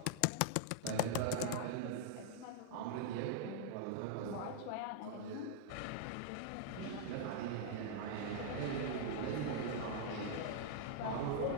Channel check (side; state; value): both; different; correlation -0.01